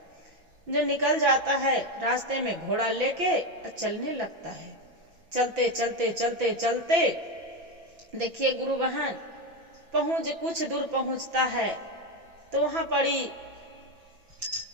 जो निकल जाता है रास्ते में घोड़ा लेके चलने लगता है। चलते चलते चलते चलते देखिए गुरु बहन, कुछ दूर पहुंचता है तो वहां पड़ी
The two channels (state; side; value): late; left; 6.0 ms